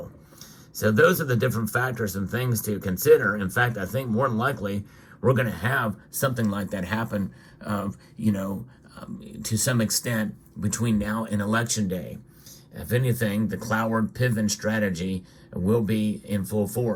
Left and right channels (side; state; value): both; identical; correlation 1.00